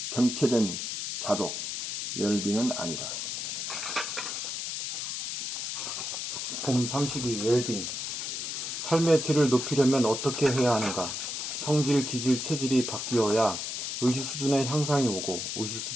정체된 자족, 웰빙은 아니다. 봄 32 웰빙. 삶의 질을 높이려면 어떻게 해야 하는가? 성질, 기질, 체질이 바뀌어야 의식 수준의 향상이 오고 의식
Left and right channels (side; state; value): left; noise; hiss, 4 dB below the sound